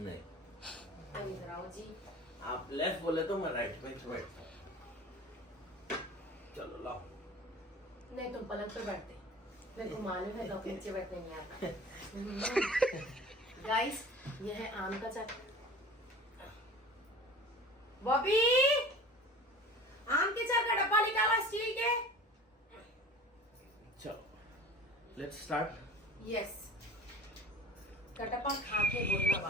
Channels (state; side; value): normal; both; correlation 0.41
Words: इधर आओ जी। आप लेफ्ट बोले तो मैं राइट में बैठता हूँ। चलो लाओ। नहीं तुम पलंग पे बैठते, मेरे को मालूम है लोग नीचे बैठने नहीं आता। गाइस ये है आम का चाट। बॉबी आम के चाट का डब्बा निकाला स्टील के। चलो लेट्स स्टार्ट। यस कटप्पा खा के बोलना